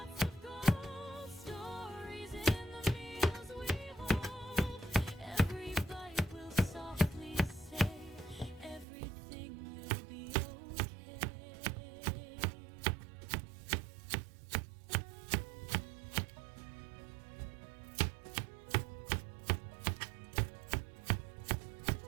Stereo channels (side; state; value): left; drops out; at 8.8 s